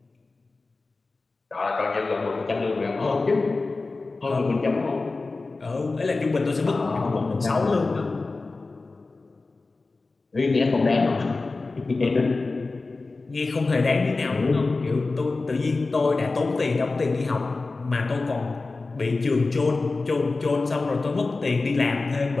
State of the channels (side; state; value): right; quieter; 3.6 dB